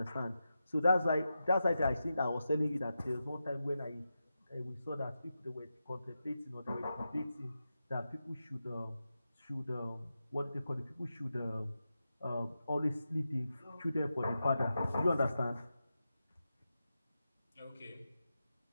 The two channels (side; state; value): both; inverted; correlation -0.90